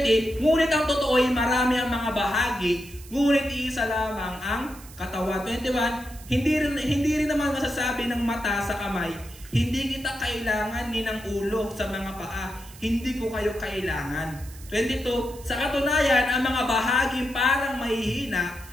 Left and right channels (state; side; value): noise; right; hiss, 19 dB below the sound